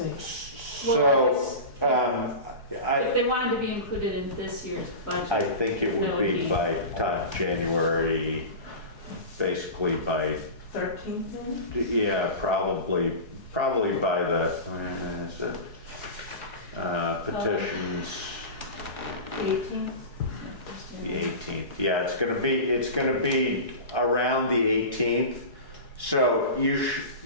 So, If they wanted to be included in this year's budget. I think it would be by January, basically by, 13th then? yeah, probably by the, when is it? Petitions, 18th? the 18th. Yeah, it's gonna be around the 18th. So you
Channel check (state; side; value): late; right; 4.7 ms